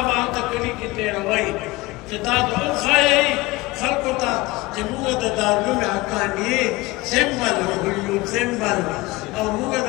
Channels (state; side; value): quieter; right; 21.1 dB